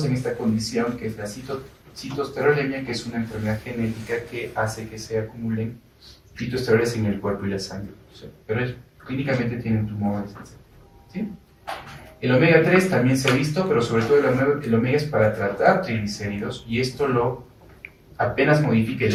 en esta condición que es la citoesterolemia, que es una enfermedad genética que hace que se acumulen fitoesteroles en el cuerpo y la sangre. Pero clínicamente tienen tumores, ¿sí? El omega 3 también se ha visto, pero sobre todo el omega es para tratar triglicéridos, y esto lo apenas modifica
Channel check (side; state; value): both; identical; correlation 1.00